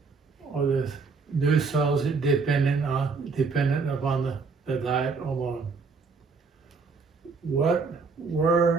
are the new cells dependent upon the diet alone?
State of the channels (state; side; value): quieter; left; 4.7 dB